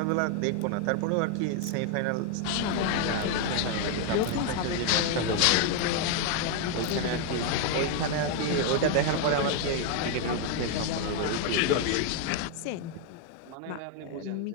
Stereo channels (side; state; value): both; different; correlation 0.01